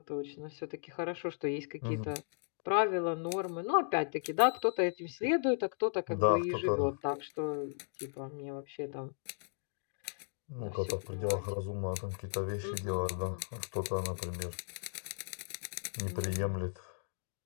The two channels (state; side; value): silent; right; digital silence